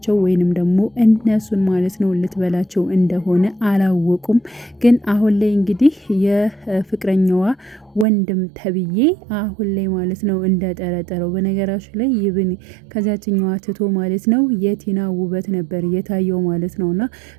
ወይንም ደግሞ እነሱን ማለት ነው ልትበላቸው እንደሆነ አላወቁም። ግን አሁን ላይ እንግዲህ የፍቅረኛዋ ወንድም ተብዬ አሁን ላይ ማለት ነው እንደጠረጠረው። በነገራችሁ ላይ ይብን ከዛችኛዋ ትቶ ማለት ነው የቲና ውበት ነበር የታየው ማለት ነውና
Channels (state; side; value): drops out; left; at 8.1 s